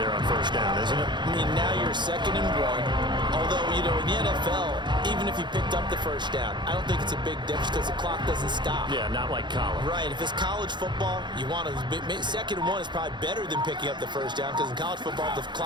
on first down, isn't it? I mean, now you're 2nd and 1. Although, you know, in the NFL, even if you picked up the first down, I don't think it's a big difference because the clock doesn't stop. Yeah, not like college. Right. If it's college football, you want to 2nd and 1 is probably better than picking up the first down because in college football, the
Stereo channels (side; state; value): left; late; 0.22 ms